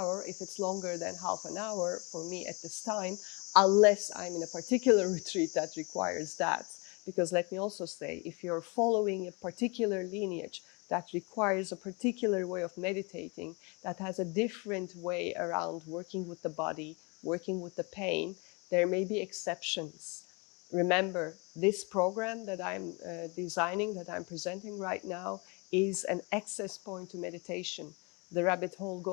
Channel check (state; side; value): quieter; right; 29.9 dB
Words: If it's longer than half an hour for me at this time, unless I'm in a particular retreat that requires that. Because let me also say, if you're following a particular lineage that requires a particular way of meditating, that has a different way around working with the body, working with the pain, there may be exceptions. Remember, this program that I'm designing, that I'm presenting right now, is an access point to meditation. The rabbit hole